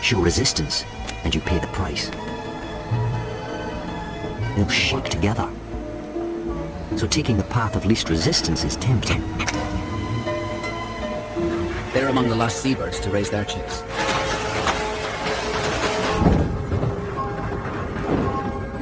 Show resistance, and you pay the price. They'll shake together. So taking the path of least resistance is tempting. They're among the last seabirds to raise their chicks.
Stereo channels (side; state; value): both; identical; correlation 1.00